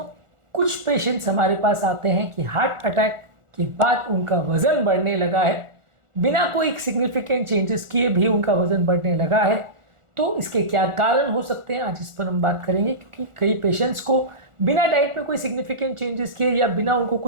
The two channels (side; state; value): left; late; 1.4 ms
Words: कुछ patients हमारे पास आते हैं कि हार्ट अटैक के बाद उनका वज़न बढ़ने लगा है। बिना कोई सिग्निफिकेंट चेंजेस किए भी उनका वज़न बढ़ने लगा है। तो इसके क्या कारण हो सकते हैं, आज इस पर हम बात करेंगे। क्योंकि कई पेशेंट्स को बिना डाइट में कोई सिग्निफिकेंट चेंजेस किए या बिना उनको